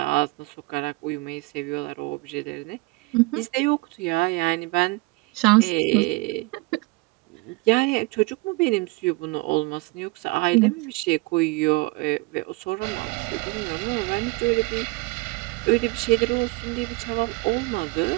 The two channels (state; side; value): quieter; left; 24.7 dB